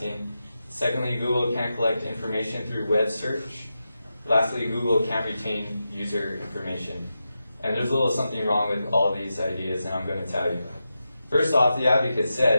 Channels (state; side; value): inverted; both; correlation -0.90